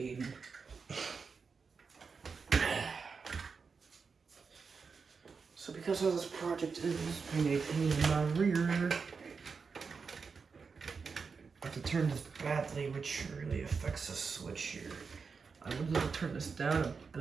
So because of this project is being a pain in my rear, I have to turn this badly, which really affects the switch here. I would love to turn this down a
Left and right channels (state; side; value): quieter; left; 5.2 dB